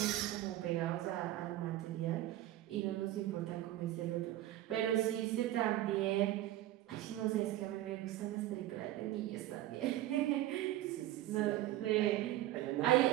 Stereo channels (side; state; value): left; quieter; 14.6 dB